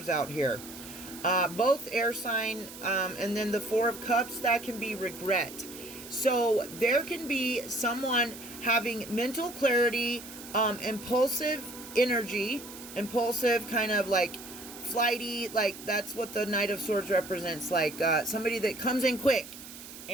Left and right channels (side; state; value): right; noise; hiss, 14 dB below the sound